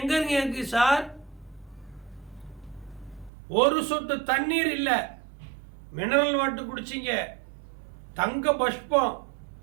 எங்க இருக்கு சார்? ஒரு சொட்டு தண்ணீர் இல்ல, மினரல் வாட்டர் குடிச்சிங்க, தங்க பஷ்பம்,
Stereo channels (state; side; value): drops out; left; at 3.3 s